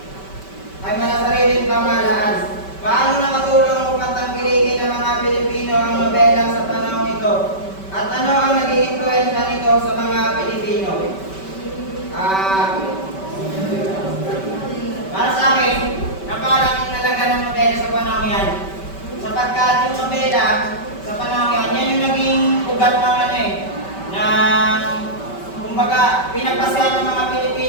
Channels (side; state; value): right; late; 5.2 ms